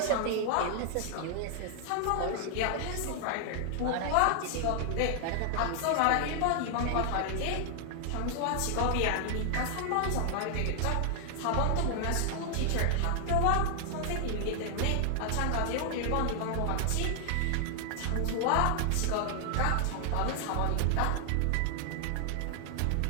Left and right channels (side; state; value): both; different; correlation 0.00